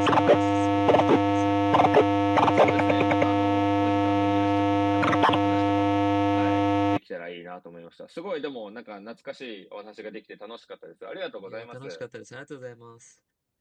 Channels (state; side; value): identical; both; correlation 1.00